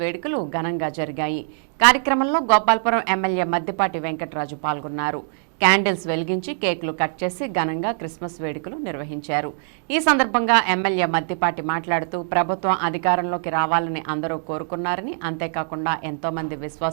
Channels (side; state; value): left; silent; digital silence